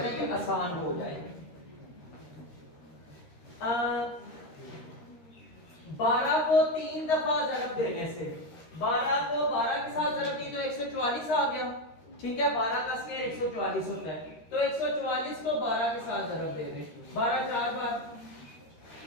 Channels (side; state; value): right; late; 13 ms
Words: ये आसान हो जाए। 12 को 3 दफा ज़रब देने से 12 को 12 के साथ ज़रब दी तो 144 आ गया, ठीक है। 12 का स्क्वायर 144 होता है, तो 144 को 12 के साथ ज़रब दे दें। 12 4 बार